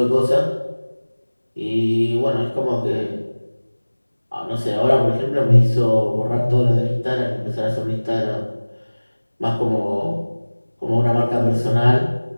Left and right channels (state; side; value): inverted; both; correlation -1.00